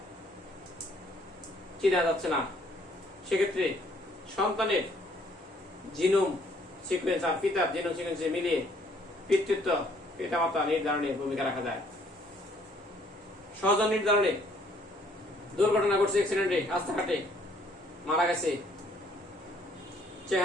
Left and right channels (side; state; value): both; normal; correlation 0.63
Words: চেনা যাচ্ছে না, সেক্ষেত্রে সন্তানের জিনোম সিকোয়েন্স আর পিতার জিনোম সিকোয়েন্সে মিলিয়ে পিতৃত্ব পিতামাতা নির্ধারণে ভূমিকা রাখা যায়। স্বজন নির্ধারণে দুর্ঘটনা ঘটছে, অ্যাক্সিডেন্টে রাস্তাঘাটে মারা গেছে,